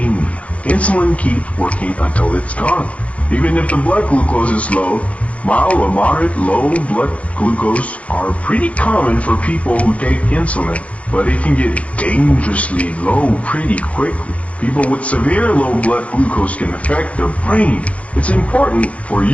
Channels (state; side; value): late; right; 0.064 ms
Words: Insulin keeps working until it's gone. Even if the blood glucose is low, mild or moderate low blood glucose are pretty common for people who take insulin, but it can get dangerously low pretty quickly. People with severe low blood glucose can affect their brain. It's important for